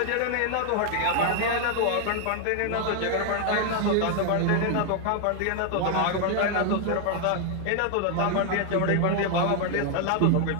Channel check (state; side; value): different; both; correlation 0.00